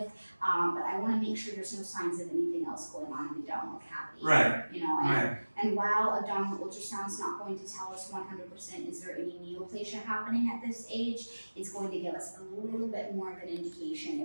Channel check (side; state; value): both; inverted; correlation -1.00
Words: but I want to make sure there's no signs of anything else going on in the abdominal cavity. And while abdominal ultrasound's not going to tell us 100% is there any neoplasia happening at this age, it's going to give us a little bit more of an indication